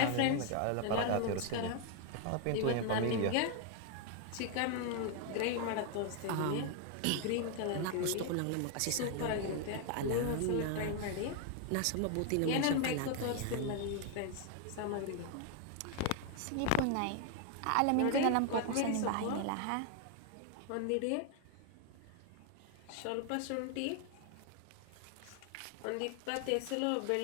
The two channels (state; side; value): different; both; correlation 0.00